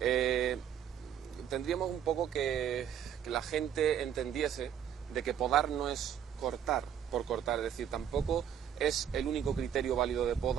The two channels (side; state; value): left; quieter; 9.1 dB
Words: Tendríamos un poco que la gente entendiese de que podar no es cortar por cortar, es decir, tampoco es el único criterio válido de